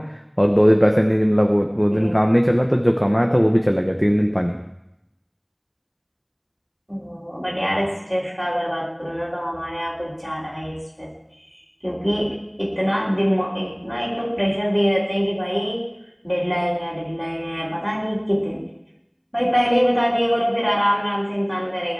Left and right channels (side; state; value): both; identical; correlation 1.00